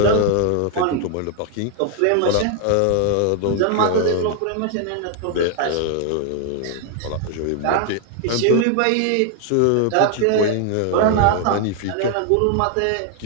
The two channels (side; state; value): both; different; correlation 0.00